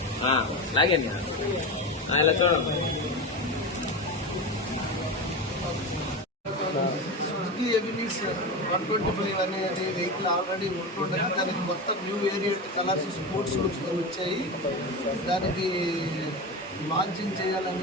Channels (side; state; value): both; normal; correlation 0.22